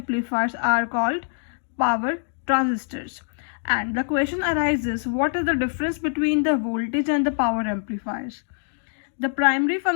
are called power transistors. And the question arises, what is the difference between the voltage and the power amplifiers? The primary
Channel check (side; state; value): right; silent; digital silence